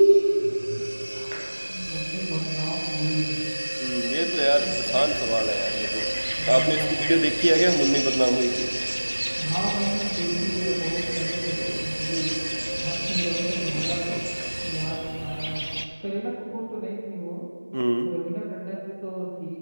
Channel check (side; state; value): both; inverted; correlation -1.00